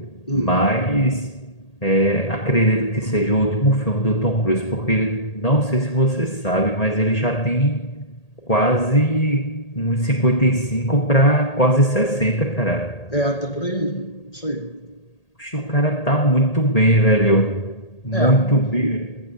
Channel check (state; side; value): late; right; 1.8 ms